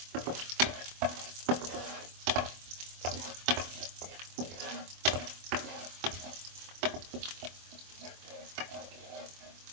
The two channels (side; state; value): left; late; 24 ms